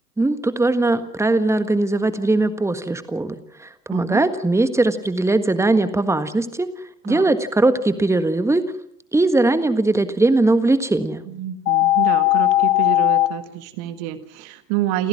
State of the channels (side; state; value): both; normal; correlation 0.68